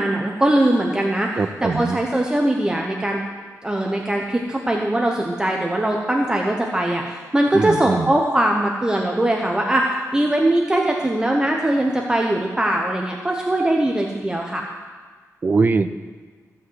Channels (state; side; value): normal; both; correlation 0.90